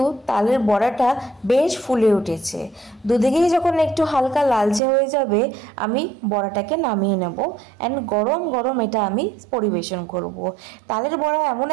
তালের বড়াটা বেশ ফুলে উঠেছে। দুদিকেই যখন একটু হালকা লালচে হয়ে যাবে আমি বড়াটাকে নামিয়ে নেব অ্যান্ড গরম গরম এটা আমি পরিবেশন করব। তালের বড়া এমন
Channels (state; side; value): drops out; left; at 4.8 s